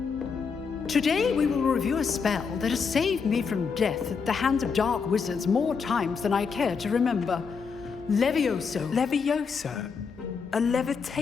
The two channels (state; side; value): quieter; right; 5.6 dB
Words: Today we will review a spell that has saved me from death at the hands of dark wizards more times than I care to remember. Levioso. Levioso? A